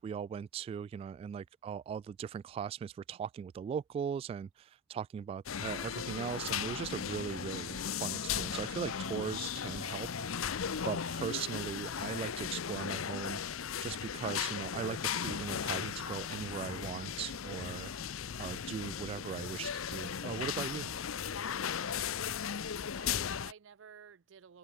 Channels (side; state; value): both; normal; correlation 0.15